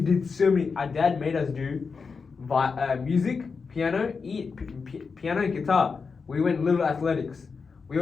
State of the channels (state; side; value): quieter; right; 5.1 dB